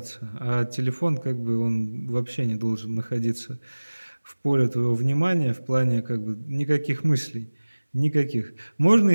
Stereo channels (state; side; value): inverted; both; correlation -1.00